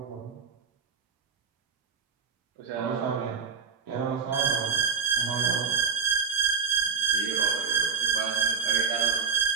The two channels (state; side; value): quieter; left; 5.9 dB